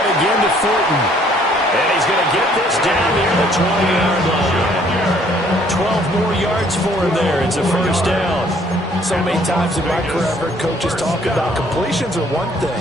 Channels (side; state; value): both; normal; correlation 0.62